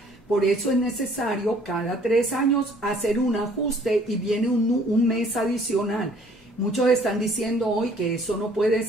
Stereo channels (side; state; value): both; normal; correlation 0.57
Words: Por eso es necesario cada 3 años hacer un ajuste y viene un mes adicional. Muchos están diciendo hoy que eso no puede